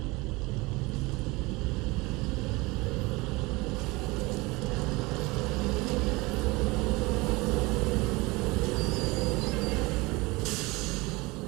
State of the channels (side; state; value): left; quieter; 23.5 dB